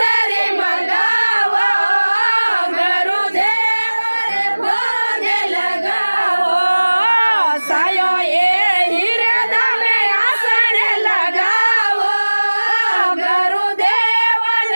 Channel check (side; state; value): both; inverted; correlation -1.00